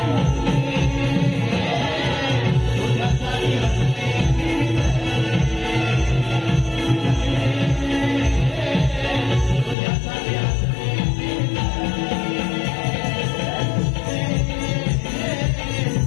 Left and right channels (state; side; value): drops out; right; at 9.8 s